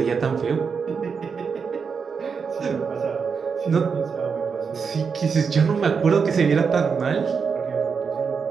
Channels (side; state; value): left; quieter; 5.8 dB